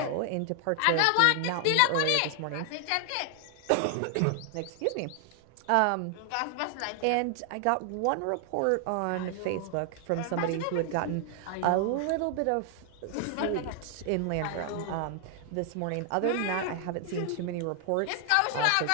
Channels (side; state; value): both; different; correlation 0.00